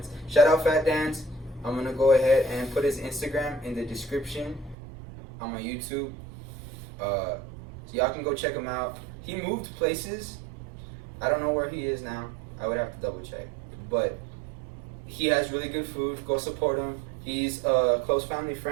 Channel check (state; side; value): drops out; left; at 4.8 s